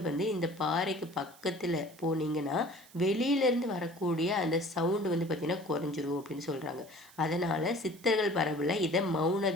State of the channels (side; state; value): right; noise; hiss, 24 dB below the sound